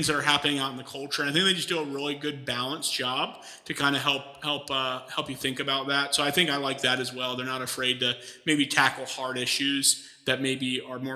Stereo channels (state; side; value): identical; both; correlation 1.00